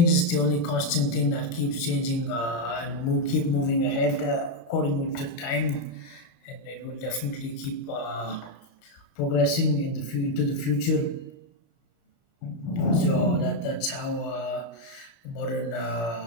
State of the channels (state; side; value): late; right; 29 ms